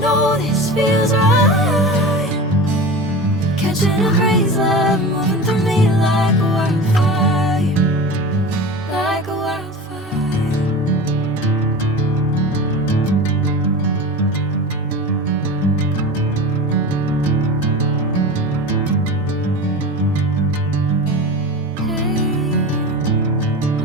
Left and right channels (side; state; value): both; normal; correlation 0.31